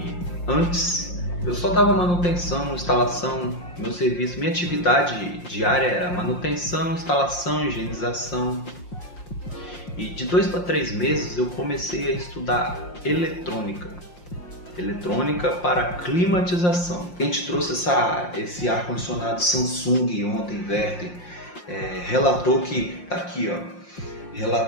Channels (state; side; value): late; right; 5.7 ms